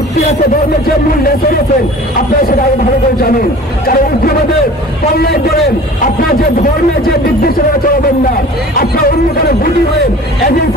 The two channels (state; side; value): normal; both; correlation 0.43